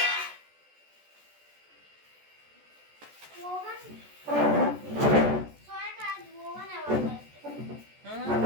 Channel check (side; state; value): left; late; 14 ms